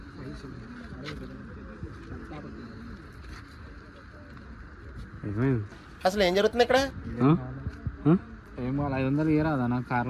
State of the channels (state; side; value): identical; both; correlation 1.00